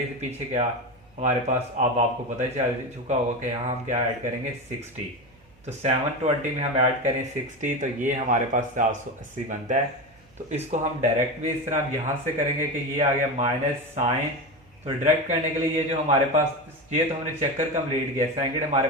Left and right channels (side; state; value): right; noise; hum, 30 dB below the sound